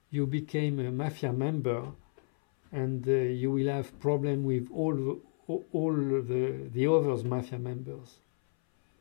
you became a mafia member, and you will have problem with all the others mafia members.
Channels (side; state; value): right; silent; 57 dB below the other